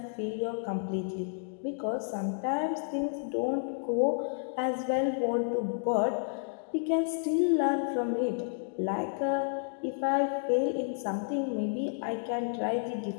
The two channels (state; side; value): silent; right; digital silence